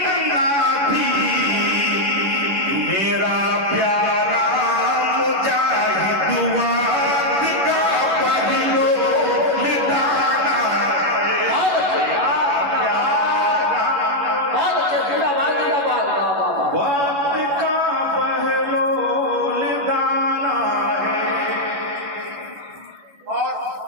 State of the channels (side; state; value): left; late; 11 ms